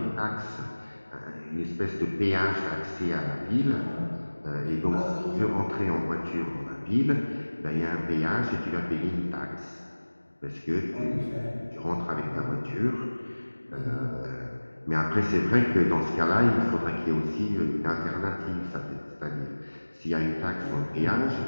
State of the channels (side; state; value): both; inverted; correlation -1.00